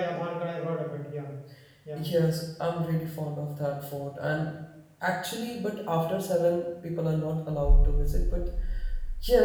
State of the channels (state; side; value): identical; both; correlation 1.00